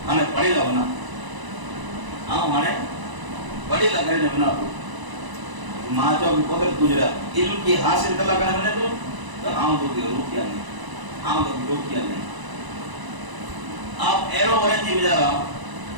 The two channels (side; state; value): left; late; 1.0 ms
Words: ہمیں پڑھے گا بنا آؤں ہمیں پڑھے گا گھر بنا تو ماں چاہو کہ قدرت گزرا علم کی حاصل کرنا کرنے بنے تو آؤں تو کہ روکیا نہیں آؤں تو کہ روکیا نہیں آپ ایرو برن جی بجا رہا